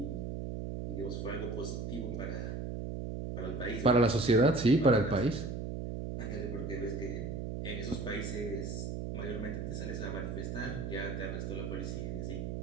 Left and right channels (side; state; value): right; noise; hum, 4 dB below the sound